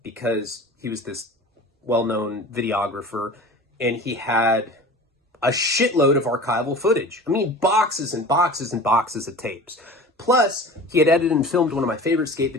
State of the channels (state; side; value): normal; both; correlation 0.38